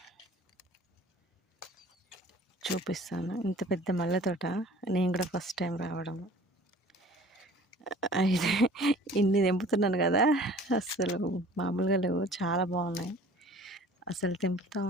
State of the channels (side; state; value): both; normal; correlation 0.49